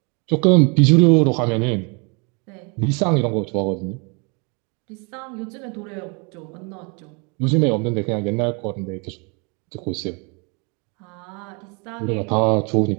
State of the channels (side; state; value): left; quieter; 32.8 dB